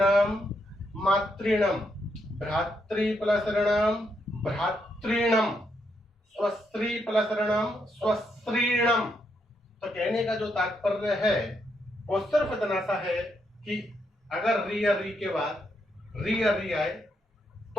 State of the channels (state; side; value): normal; both; correlation 0.79